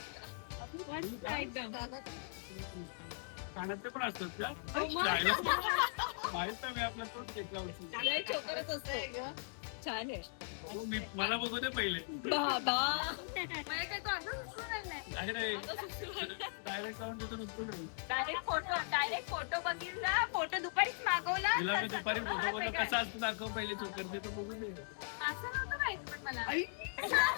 कानातले पण असतात का? माहित नाही, मी आपला तोच घेतला होता. छान आहे. मला बघू दे पहिले. डायरेक्ट जाऊन तिथून उचलून येऊ. डायरेक्ट फोटो बघितला, फोटो दुपारीच मागवला. तिला मी दुपारी फोटो बघतो कसा असतो दाखव पहिले चोकर ते तर बघू दे. असं नव्हतं माहिती पण मला.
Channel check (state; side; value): silent; right; digital silence